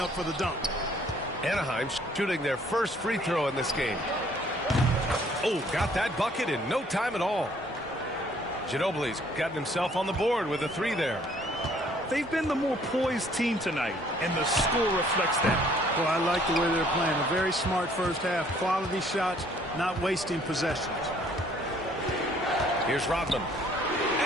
for the dunk. Anaheim shooting their first free throw in this game. Oh, got that bucket in no time at all. Ginobili's gotten himself on the board with a 3 there. They've been the more poised team tonight, and the score reflects that. Well, I like the way they're playing. A very smart first half. Quality shots, not wasting possessions. Here's Rodman.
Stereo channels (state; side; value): normal; both; correlation 0.61